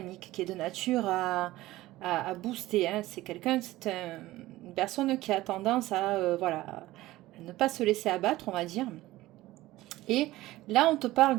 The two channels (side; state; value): left; quieter; 17.1 dB